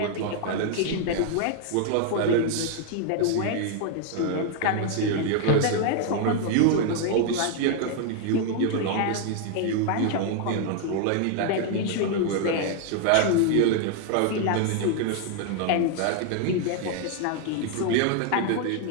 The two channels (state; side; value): different; both; correlation 0.00